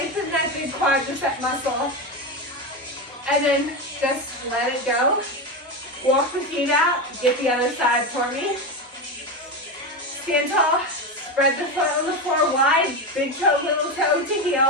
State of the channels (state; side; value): normal; both; correlation 0.16